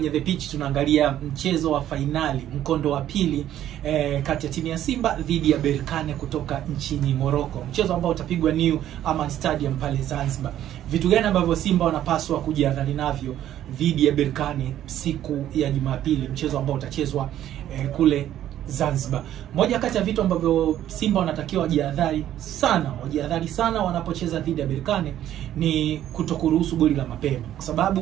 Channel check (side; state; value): left; quieter; 11.9 dB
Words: The Pitch tunaangalia mchezo wa fainali, mkondo wa pili kati ya timu ya Simba dhidi ya Berkane kutoka nchini Morocco. Mchezo ambao utapigwa New Aman Stadium pale Zanzibar. Vitu gani ambavyo Simba wanapaswa kujiandaa navyo dhidi ya Berkane siku ya Jumapili, mchezo ambao utachezwa kule Zanzibar. Moja kati ya vitu ambavyo Simba wanatakiwa wajiadhari sana wanapocheza dhidi ya Berkane ni kutokuruhusu goli la mapema, kwa